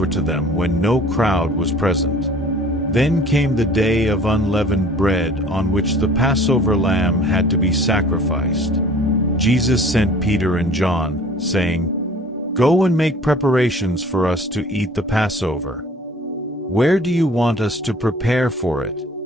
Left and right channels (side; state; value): both; normal; correlation 0.49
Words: to them when no crowd was present. Then came the day of unleavened bread on which the Passover lamb had to be sacrificed. Jesus sent Peter and John, saying, "Go and make preparations for us to eat the Passover." "Where do you want us to prepare for it?"